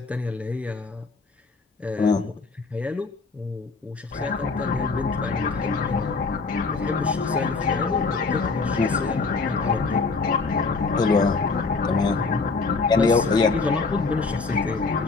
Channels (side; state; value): right; quieter; 4.2 dB